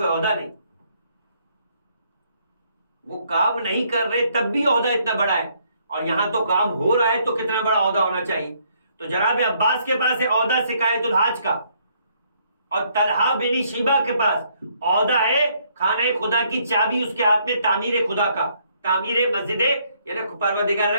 عہدہ نہیں. وہ کام نہیں کر رہے تب بھی عہدہ اتنا بڑا ہے، اور یہاں تو کام ہو رہا ہے تو کتنا بڑا عہدہ ہونا چاہیے. تو جناب عباس کے پاس ہے عہدہ سقایت الحاج کا، اور طلحہ بن شیبہ کے پاس عہدہ ہے خانہ خدا کی چابی اس کے ہاتھ میں تعمیر خدا کا، تعمیر مسجد یعنی پروردگار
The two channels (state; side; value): inverted; both; correlation -0.69